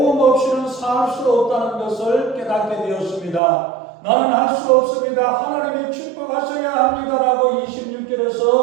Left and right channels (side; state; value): left; drops out; at 3.4 s